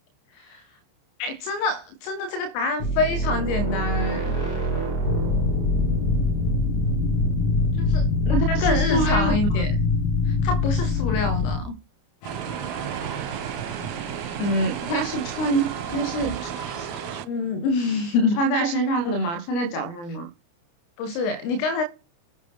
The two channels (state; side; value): late; right; 29 ms